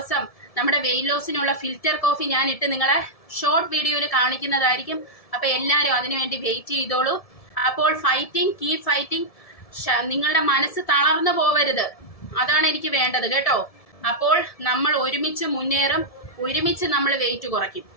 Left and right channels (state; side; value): late; right; 1.7 ms